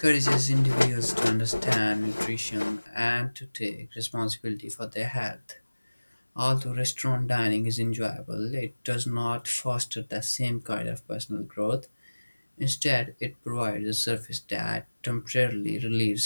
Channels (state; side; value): inverted; both; correlation -1.00